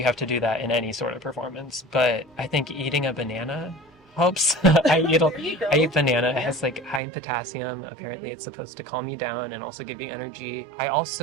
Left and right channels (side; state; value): left; drops out; at 7.0 s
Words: have to do that in any sort of performance, but I think eating a banana helps. I eat banana. It has like high in potassium. Apparently it's supposed to calm you down and also give you energy. I